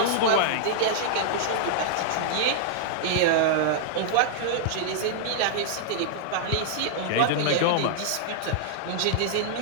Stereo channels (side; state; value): both; different; correlation -0.01